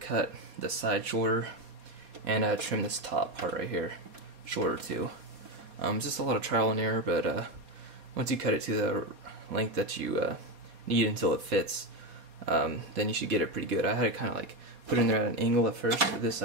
the side shorter, and trim this top part right here shorter too. It's just a lot of trial and error, but once you cut it to the length that you need until it fits, then you should get it pretty good. I had to kind of like put it in there at an angle at first, this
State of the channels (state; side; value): late; left; 4.2 ms